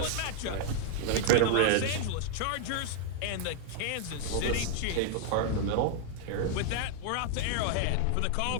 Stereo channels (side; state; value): both; different; correlation 0.00